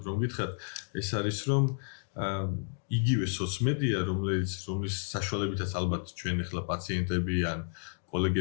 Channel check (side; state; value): right; silent; 57 dB below the other